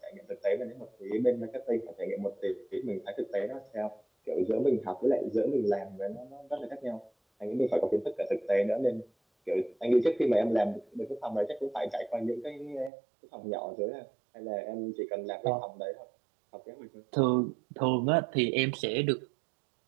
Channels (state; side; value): drops out; left; at 12.9 s